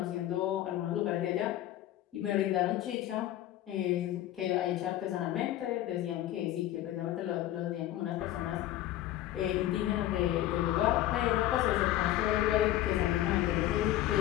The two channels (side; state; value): right; quieter; 13.8 dB